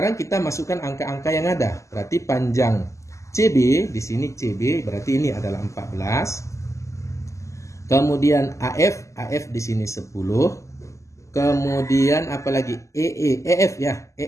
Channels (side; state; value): right; late; 0.15 ms